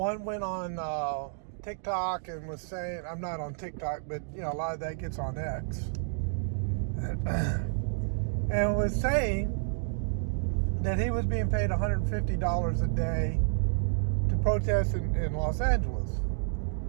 went on TikTok and was saying, I'm not on TikTok, but a lot of that gets on X, and was saying that he was being paid $150 a day to protest in Los Angeles.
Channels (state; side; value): silent; left; digital silence